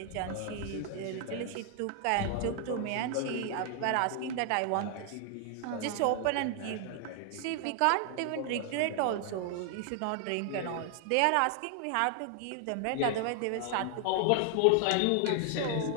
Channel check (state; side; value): different; both; correlation 0.00